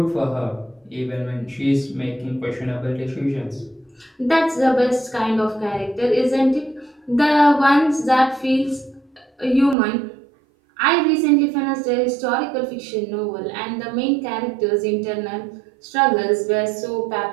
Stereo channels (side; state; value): left; drops out; at 9.8 s